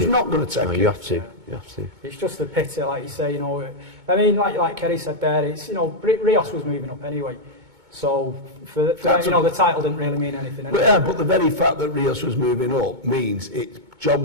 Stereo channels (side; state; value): left; late; 2.2 ms